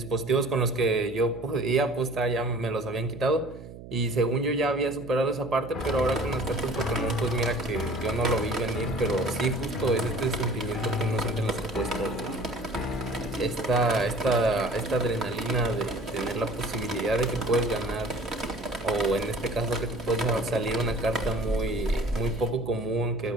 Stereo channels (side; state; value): right; noise; hum, 15 dB below the sound